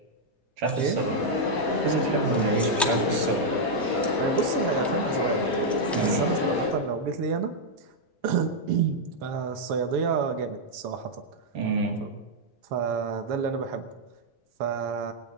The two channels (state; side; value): normal; both; correlation -0.03